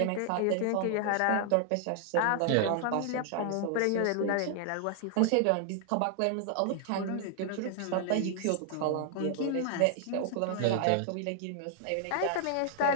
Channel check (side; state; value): both; different; correlation 0.00